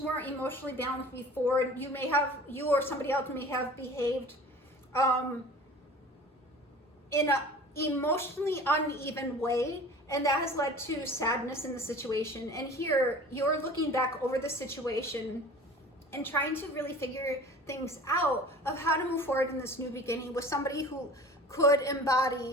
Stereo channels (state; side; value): normal; both; correlation 0.42